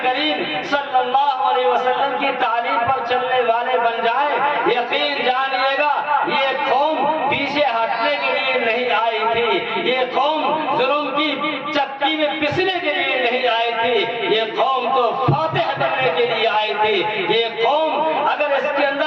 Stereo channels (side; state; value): both; identical; correlation 1.00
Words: کریم صلی اللہ علیہ وسلم کی تعلیم پر چلنے والے بن جائیں، یقین جانیے گا یہ قوم پیچھے ہٹنے کے لیے نہیں آئی تھی، یہ قوم ظلم کی چکی میں پسنے کے لیے نہیں آئی تھی، یہ قوم تو فاتح بننے کے لیے آئی تھی۔ یہ قوم اگر اس کے